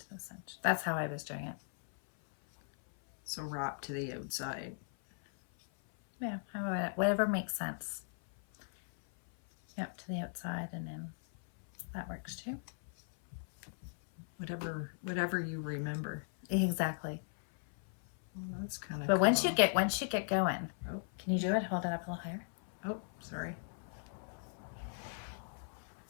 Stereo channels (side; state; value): right; silent; 53 dB below the other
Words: the center. That's how I was doing it. So wrap to the outside. Yeah, whatever makes sense. Yep, to the outside, and then that works too. Whatever you remember. Exactly. Well, that's kind of. But cool. once you get going, can you do it? Hold it up a little higher. Oh, sorry.